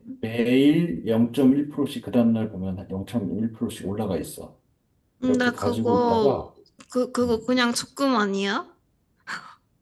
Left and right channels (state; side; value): identical; both; correlation 1.00